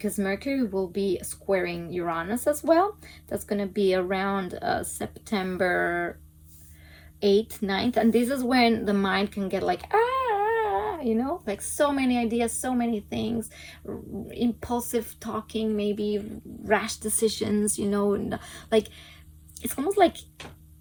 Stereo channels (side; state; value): both; identical; correlation 1.00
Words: Mercury will be squaring Uranus as well. That's going to be around September 8th, 9th, and this is when the mind can get like, like so many ideas, so many things, impulsive talking, maybe rash decisions, like it's almost like